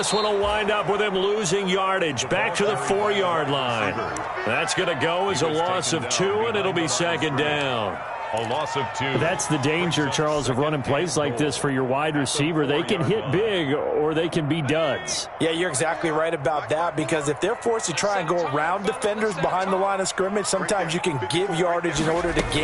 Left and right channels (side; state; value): both; identical; correlation 1.00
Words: one will wind up with him losing yardage back to the 4-yard line. That's going to go as a loss of 2, and it'll be 2nd down. A loss of 2. That's the danger, Charles, of running plays like this for your wide receiver. They can hit big or they can be duds. Yeah, you're exactly right about that, because if they're forced to try and go around defenders behind the line of scrimmage, sometimes you can give yardage in order to